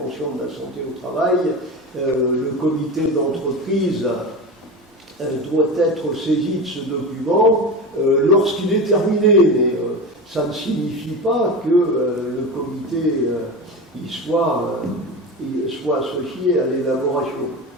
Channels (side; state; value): both; normal; correlation 0.25